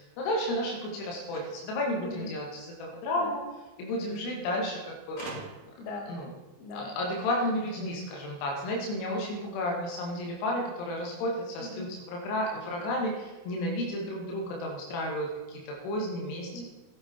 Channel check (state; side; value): late; right; 29 ms